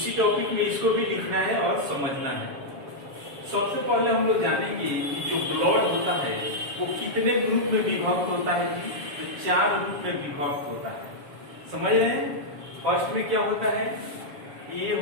टॉपिक में इसको भी लिखना है और समझना है। सबसे पहले हम लोग जानेंगे कि जो ब्लड होता है वो कितने ग्रुप में विभक्त होता है जी। तो 4 ग्रुप में विभक्त होता है, समझ रहे हैं। फर्स्ट में क्या होता है, ए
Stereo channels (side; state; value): left; late; 7.2 ms